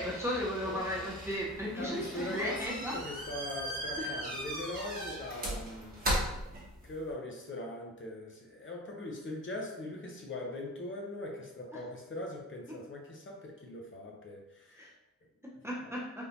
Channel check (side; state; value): both; normal; correlation 0.33